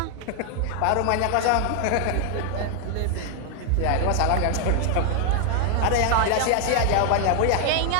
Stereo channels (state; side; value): different; both; correlation 0.00